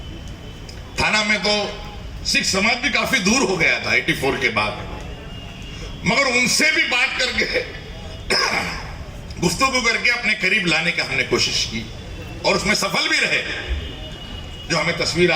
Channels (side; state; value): both; identical; correlation 1.00